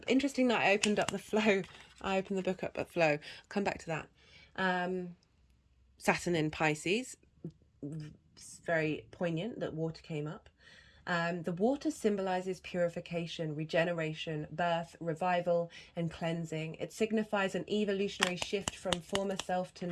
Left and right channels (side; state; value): both; identical; correlation 1.00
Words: Interesting that I opened up the flow. I opened the book up at flow. Come back to that. Saturn in Pisces. It's very poignant that water came up. The water symbolizes purification, regeneration, birth, revival, and cleansing. It signifies an evolutionary shift from former self to